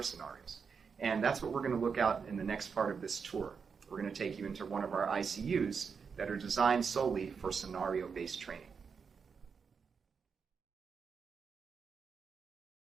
scenarios. And that's what we're going to look at in the next part of this tour. We're going to take you into one of our ICUs that are designed solely for scenario-based training.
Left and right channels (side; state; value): left; quieter; 5.9 dB